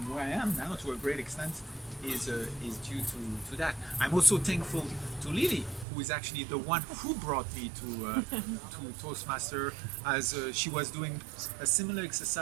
where I am now, to a great extent, is due to that. I'm also thankful to Lily, who is actually the one who brought me to Toastmaster, as she was doing a similar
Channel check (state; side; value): drops out; left; at 5.9 s